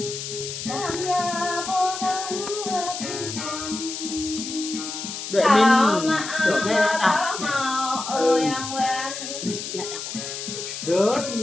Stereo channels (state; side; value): noise; left; hiss, 7 dB below the sound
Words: Đợi mình Được đây đã. Rớt